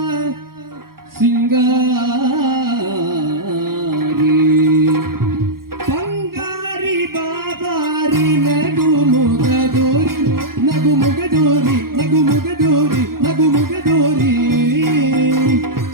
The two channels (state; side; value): late; left; 0.92 ms